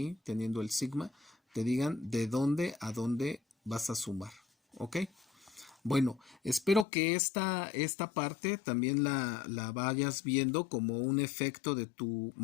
teniendo el sigma, te digan de dónde a dónde vas a sumar. ¿Ok? Bueno, espero que esta parte también la vayas viendo como un efecto de tu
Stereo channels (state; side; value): drops out; right; at 6.9 s